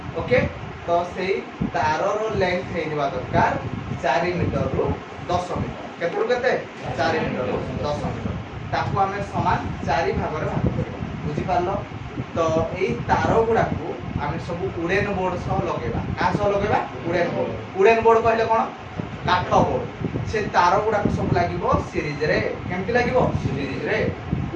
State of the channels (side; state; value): both; identical; correlation 1.00